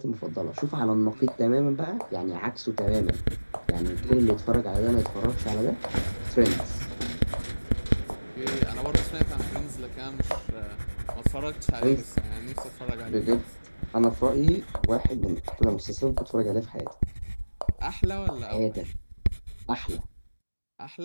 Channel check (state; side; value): inverted; both; correlation -1.00